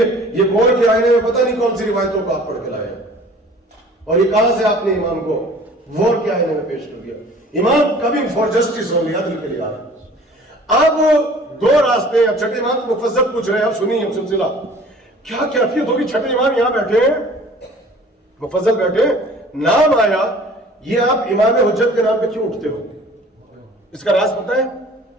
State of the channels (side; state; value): both; normal; correlation 0.49